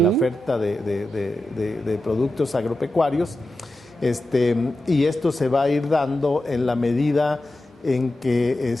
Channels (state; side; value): normal; both; correlation 0.91